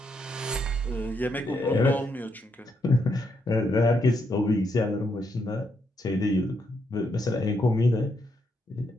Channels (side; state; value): both; normal; correlation 0.78